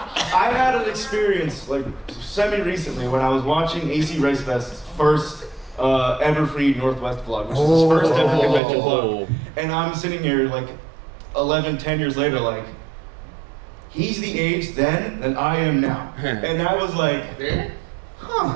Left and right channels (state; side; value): drops out; left; at 8.6 s